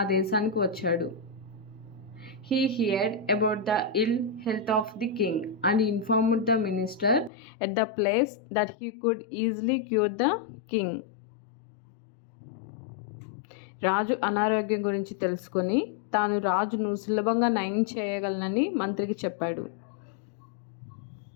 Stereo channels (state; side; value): drops out; right; at 7.3 s